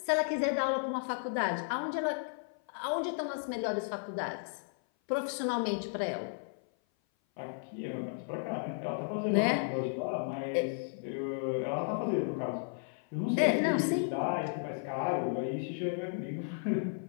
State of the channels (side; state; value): right; silent; 55 dB below the other